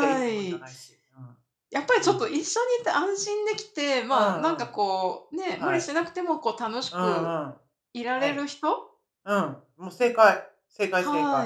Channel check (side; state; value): both; identical; correlation 1.00